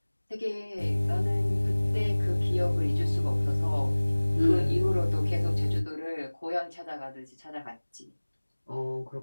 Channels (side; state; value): both; inverted; correlation -1.00